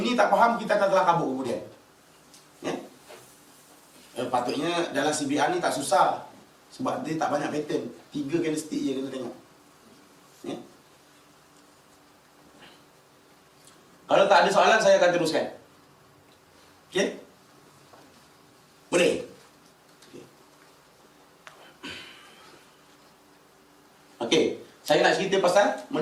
tak faham, kita akan telah kabur kemudian. Patutnya dalam CBR ni tak susah. Sebab dia tak banyak pattern. 3 candlestick je kena tengok. Kalau tak ada soalan, saya akan teruskan. Okey? Boleh? Okey. Saya nak cerita pasal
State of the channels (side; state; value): both; identical; correlation 1.00